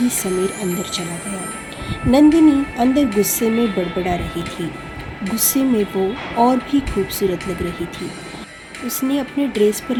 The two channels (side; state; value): both; identical; correlation 1.00